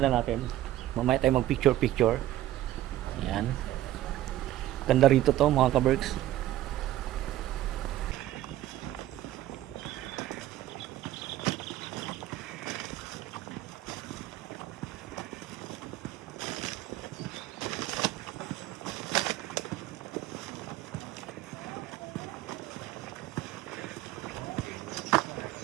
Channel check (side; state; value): left; quieter; 14.1 dB